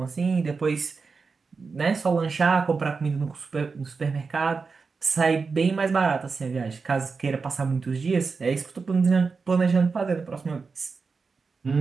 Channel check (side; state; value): left; quieter; 4.7 dB